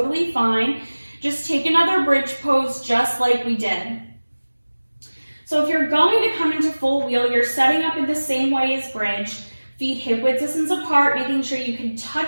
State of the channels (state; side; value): inverted; both; correlation -1.00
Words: fine. Just take another bridge pose just like we did. So if you're going to come into full wheel, you're setting up in the same way as bridge. Feet hip width distance apart, making sure you can